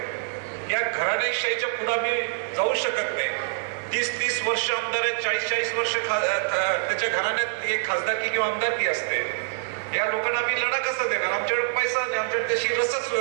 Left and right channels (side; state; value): left; silent; digital silence